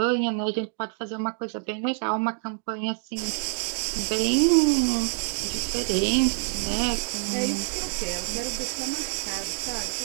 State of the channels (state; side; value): silent; left; 56 dB below the other